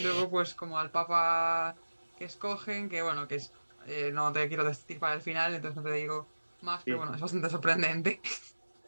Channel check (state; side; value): inverted; both; correlation -1.00